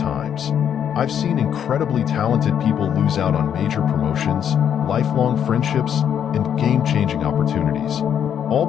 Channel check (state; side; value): quieter; right; 8.8 dB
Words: I've seen incredibly talented people lose out on major promotions, lifelong friendships, and game-changing opportunities, all